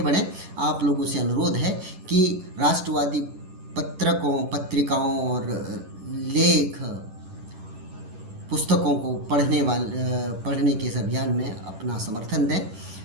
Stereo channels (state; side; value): late; left; 11 ms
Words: बढ़ें, आप लोगों से अनुरोध है कि राष्ट्रवादी पत्रिकाओं और लेख पुस्तकों को पढ़ने के इस अभियान में अपना समर्थन दें।